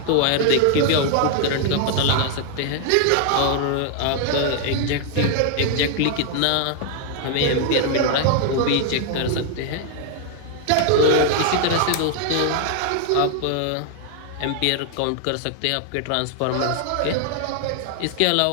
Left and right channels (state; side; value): different; both; correlation 0.00